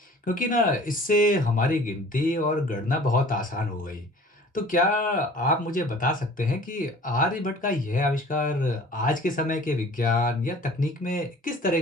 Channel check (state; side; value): normal; both; correlation 0.47